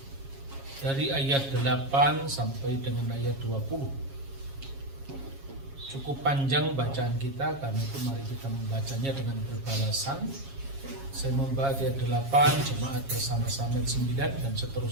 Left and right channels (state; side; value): late; left; 7.3 ms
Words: dari ayat 8 sampai dengan ayat 20. Cukup panjang bacaan kita, karena itu mari kita membacanya dengan berbalasan. Saya membaca ayat 8, jemaat bersama-sama 9 dan